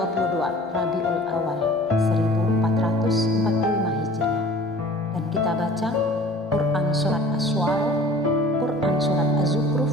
Rabiul Awal 1445 Hijriah, dan kita baca Quran Surat Asy-Syu'ara, Quran Surat Az-Zukhruf,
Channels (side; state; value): both; normal; correlation 0.47